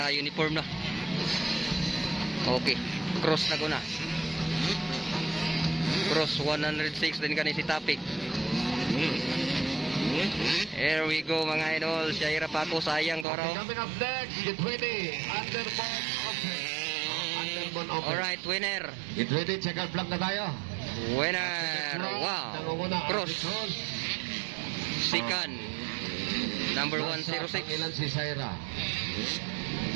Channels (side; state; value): left; drops out; at 13.2 s